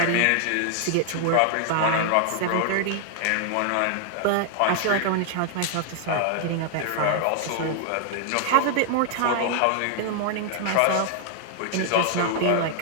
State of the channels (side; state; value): both; different; correlation 0.00